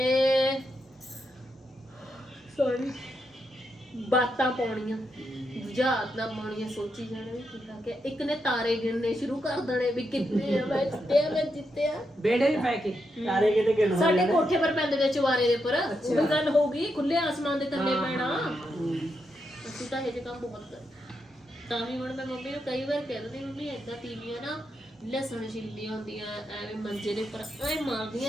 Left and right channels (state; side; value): normal; both; correlation 0.83